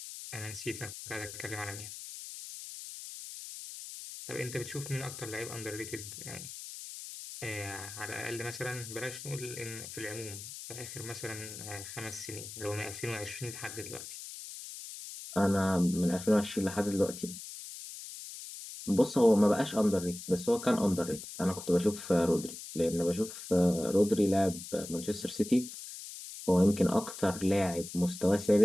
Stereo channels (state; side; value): noise; left; hiss, 11 dB below the sound